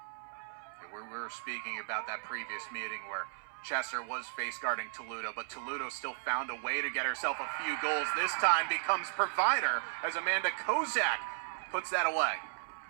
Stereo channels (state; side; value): silent; left; 54 dB below the other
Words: We were speaking about that previous meeting where Chester was face guarding Toledo, but Toledo still found a way to get herself a few goals. This time becomes provider as Amanda Kozak puts that away.